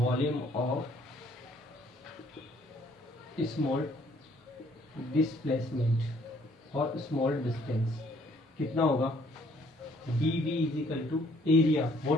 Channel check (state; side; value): normal; both; correlation 0.63